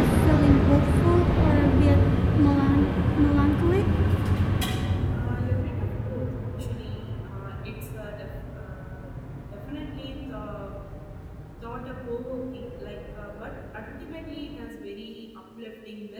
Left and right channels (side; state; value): both; identical; correlation 1.00